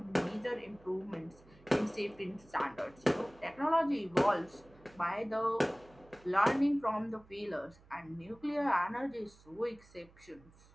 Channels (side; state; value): right; noise; hum, 26 dB below the sound